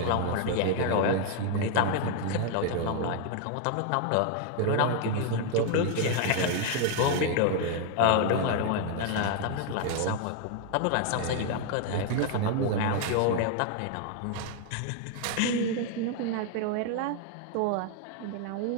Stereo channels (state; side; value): different; both; correlation 0.00